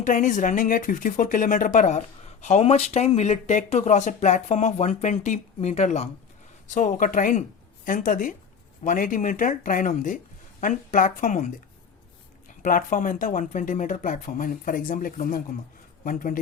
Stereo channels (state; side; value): quieter; right; 6.5 dB